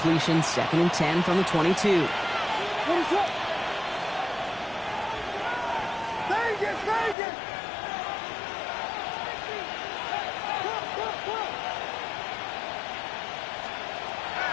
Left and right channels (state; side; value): drops out; right; at 7.2 s